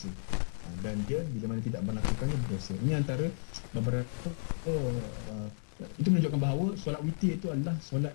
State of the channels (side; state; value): right; silent; digital silence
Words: Dan dia bila mana tidak melakukannya berdosa. Ini antara beberapa itu menunjukkan bahawa solat witir itu adalah solat